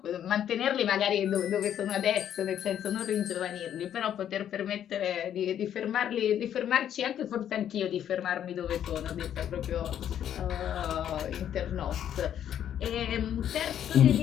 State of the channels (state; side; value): quieter; right; 10.0 dB